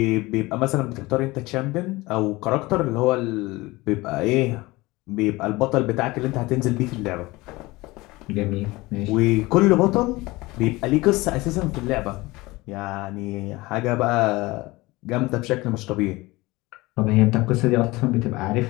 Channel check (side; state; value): right; quieter; 21.2 dB